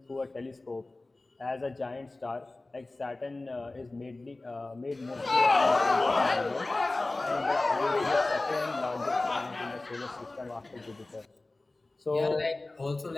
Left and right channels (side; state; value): right; quieter; 3.0 dB